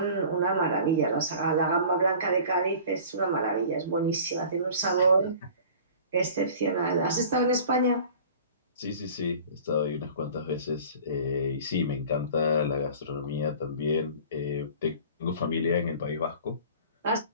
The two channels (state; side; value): inverted; both; correlation -0.44